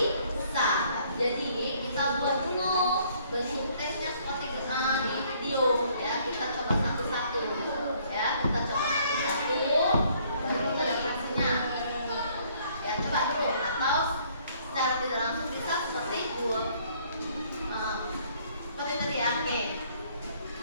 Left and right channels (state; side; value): inverted; both; correlation -0.63